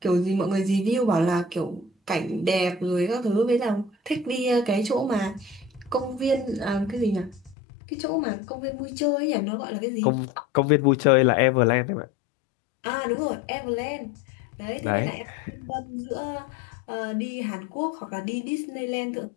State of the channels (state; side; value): drops out; right; at 7.6 s